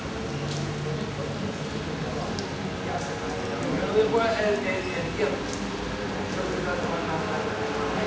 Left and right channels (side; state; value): both; identical; correlation 1.00